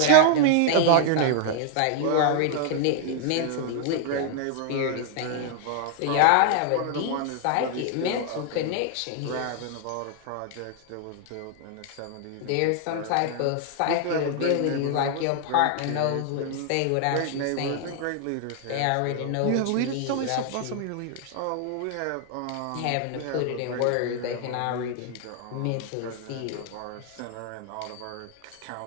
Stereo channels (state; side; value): different; both; correlation 0.00